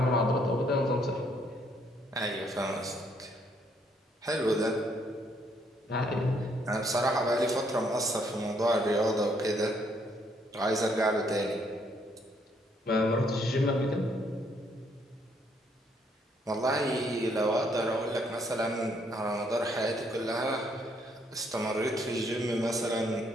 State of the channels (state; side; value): normal; both; correlation 0.69